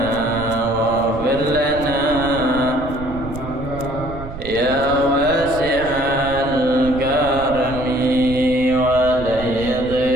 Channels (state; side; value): noise; right; rumble, 12 dB below the sound